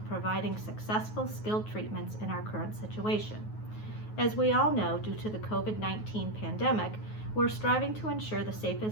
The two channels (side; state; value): right; late; 9.4 ms